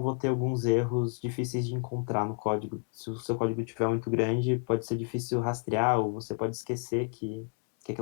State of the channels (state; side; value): quieter; right; 39.4 dB